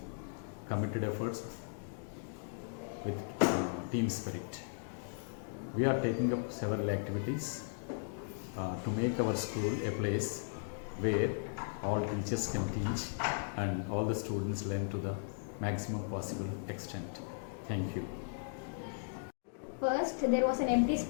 committed efforts with team spirit. We are taking up several activities to make our school a place where all teachers can teach and all the students learn to the maximum possible extent. Thank you. First, there was an empty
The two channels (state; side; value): silent; right; digital silence